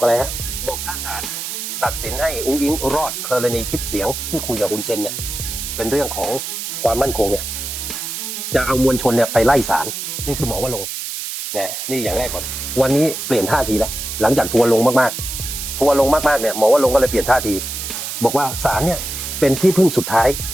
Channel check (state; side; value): noise; right; hiss, 6 dB below the sound